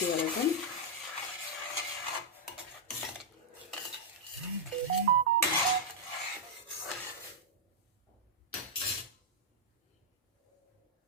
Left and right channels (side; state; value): both; normal; correlation -0.07